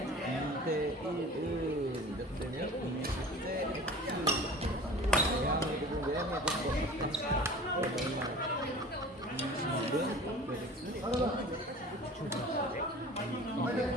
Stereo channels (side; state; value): both; normal; correlation 0.41